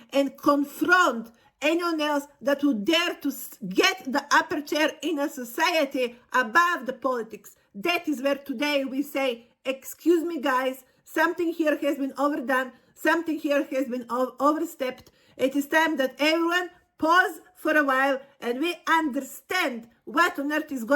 and confront anyone else that would dare to get the upper chair in a society above the politics. That is where today we say, excuse me guys, something here has been overdone, something here has been overstepped. It is time that everyone pause for a while and we understand what on earth is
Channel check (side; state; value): both; identical; correlation 1.00